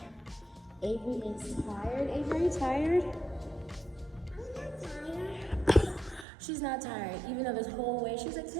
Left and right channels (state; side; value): drops out; left; at 6.2 s